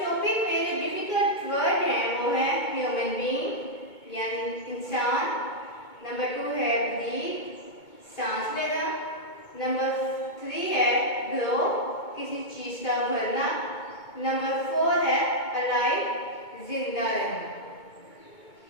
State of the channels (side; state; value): right; late; 2.2 ms